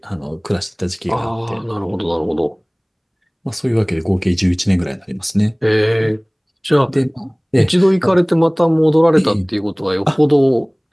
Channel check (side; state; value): both; identical; correlation 1.00